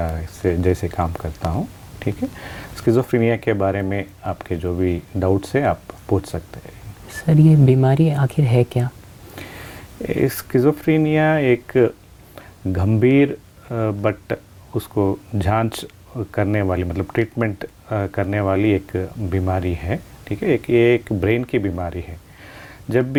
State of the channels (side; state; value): both; identical; correlation 1.00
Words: से जैसे काम करता हूँ। ठीक है, स्किज़ोफ्रेनिया के बारे में आपके जो भी डाउट्स हैं आप पूछ सकते हैं। सर, ये बीमारी आखिर है क्या? स्किज़ोफ्रेनिया एक गंभीर बट उसको जांच करने वाली मतलब ट्रीटमेंट करने वाली एक बीमारी है। ठीक है, एक ब्रेन की बीमारी है। जब